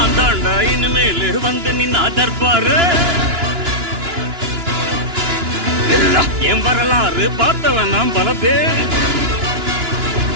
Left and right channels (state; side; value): late; left; 2.9 ms